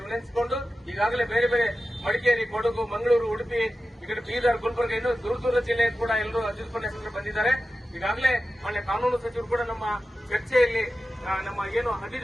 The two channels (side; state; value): both; normal; correlation 0.93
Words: ವಿನಂತಿಸಿಕೊಂಡು, ಈಗಾಗಲೇ ಬೇರೆ ಬೇರೆ ಮಡಿಕೇರಿ, ಕೊಡಗು, ಮಂಗಳೂರು, ಉಡುಪಿ, ಈ ಕಡೆ ಬೀದರ್, ಗುಲ್ಬರ್ಗ, ಇನ್ನೂ ದೂರ ಜಿಲ್ಲೆ ಕೂಡ ಎಲ್ಲರೂ ಅತಿಥಿ ಉಪನ್ಯಾಸಕರು ಬಂದಿದ್ದಾರೆ. ಈಗಾಗಲೇ ಮಾನ್ಯ ಕಾನೂನು ಸಚಿವರು ಕೂಡ ನಮ್ಮ ಚರ್ಚೆಯಲ್ಲಿ ನಮ್ಮ ಏನು